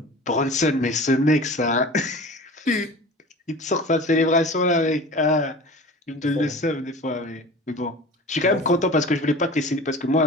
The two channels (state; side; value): normal; both; correlation 0.38